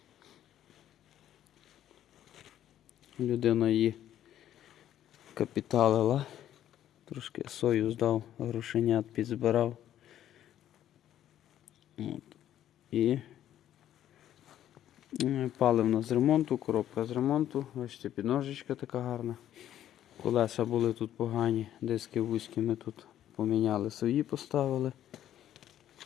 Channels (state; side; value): quieter; right; 11.5 dB